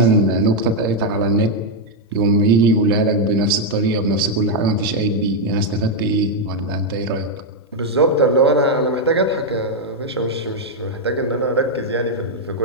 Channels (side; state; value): both; normal; correlation 0.00